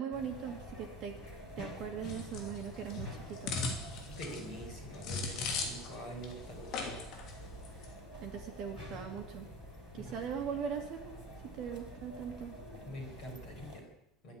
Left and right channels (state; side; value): normal; both; correlation 0.34